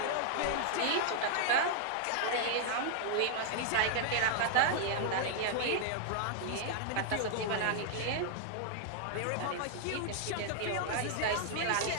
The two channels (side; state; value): both; different; correlation 0.00